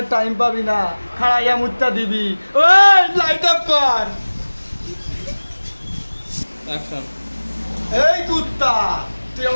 টাইম পাবি না, খাড়াইয়া মুত্তা দিবি। ওই লাইট অফ কর। অ্যাকশন। এই কুত্তা তুই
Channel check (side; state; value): both; inverted; correlation -1.00